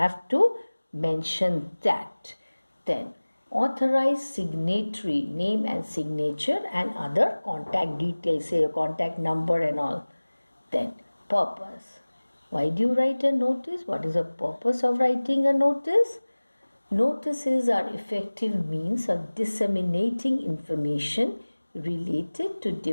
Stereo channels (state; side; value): inverted; both; correlation -1.00